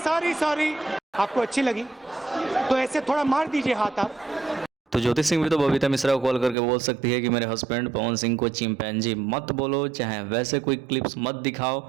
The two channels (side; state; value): left; drops out; at 6.6 s